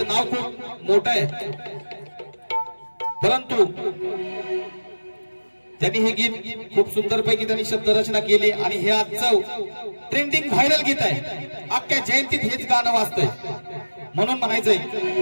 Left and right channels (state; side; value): inverted; both; correlation -1.00